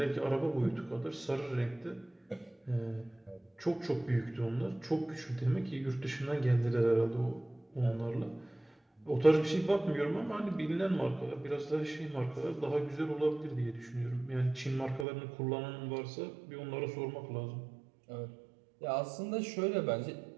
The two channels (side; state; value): left; drops out; at 15.1 s